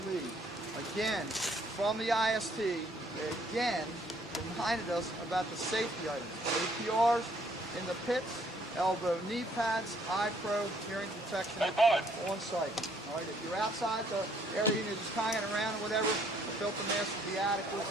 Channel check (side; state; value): both; normal; correlation 0.65